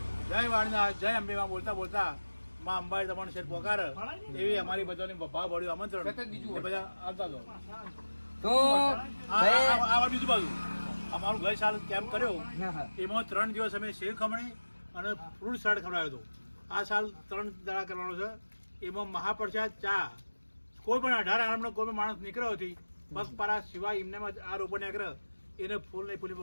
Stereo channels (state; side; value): inverted; both; correlation -1.00